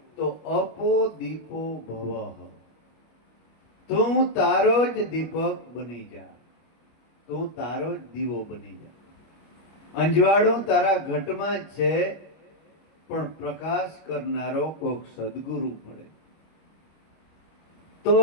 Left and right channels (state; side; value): late; right; 25 ms